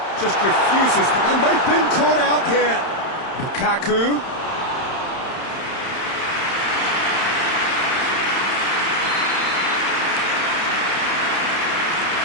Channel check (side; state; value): right; late; 31 ms